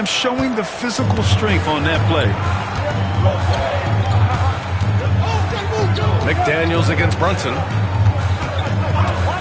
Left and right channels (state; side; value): identical; both; correlation 1.00